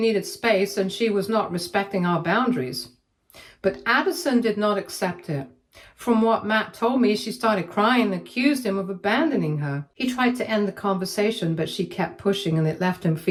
space and she was not respecting our boundaries. But Addison did not accept it. From what Matt told me, she started crying and accused him of abandoning her. He tried to end the conversation, but she kept pushing and it left him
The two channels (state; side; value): identical; both; correlation 1.00